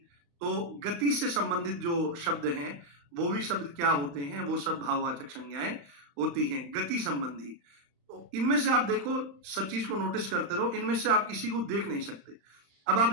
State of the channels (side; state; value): left; late; 35 ms